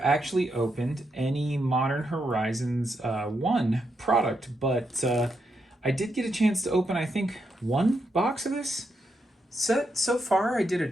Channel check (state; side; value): normal; both; correlation 0.82